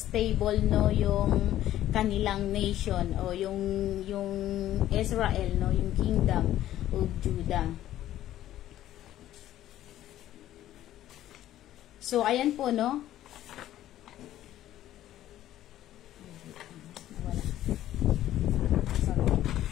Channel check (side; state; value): right; quieter; 13.0 dB